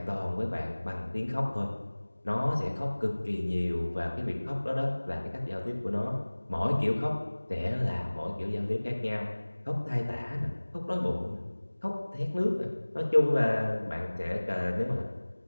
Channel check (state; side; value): inverted; both; correlation -1.00